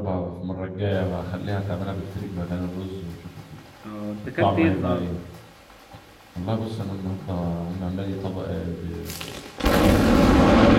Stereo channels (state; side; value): identical; both; correlation 1.00